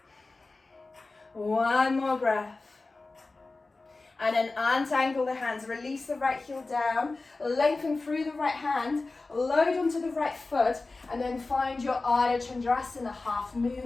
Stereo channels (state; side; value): quieter; right; 3.5 dB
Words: 1 more breath. And then untangle the hands, release the right heel down, lengthen through the right hand, load onto the right foot, and then find your Ardha Chandrasana, half